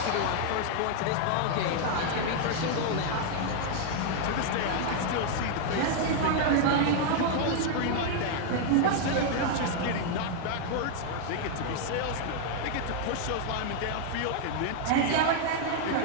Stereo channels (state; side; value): different; both; correlation 0.00